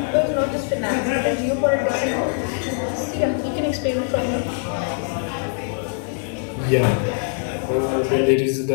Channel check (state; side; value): silent; right; 64 dB below the other